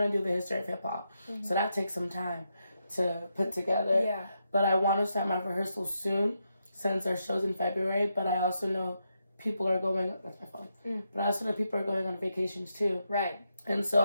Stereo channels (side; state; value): both; inverted; correlation -0.83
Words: to do the history of hip hop. So that takes some time to put together. Yeah. But I want to start my rehearsals soon, since our show's in February. But I also know people are going, that's my phone. But I also know people are going on vacations too. Right. And